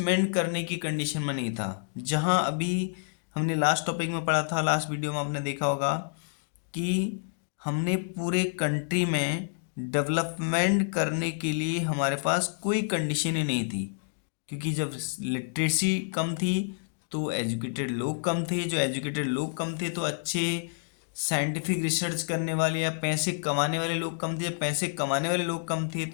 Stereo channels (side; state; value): right; silent; digital silence